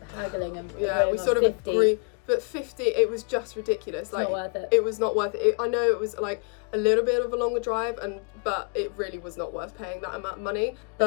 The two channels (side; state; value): right; quieter; 37.4 dB